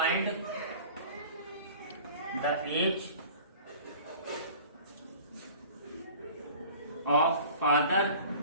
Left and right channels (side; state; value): both; inverted; correlation -0.44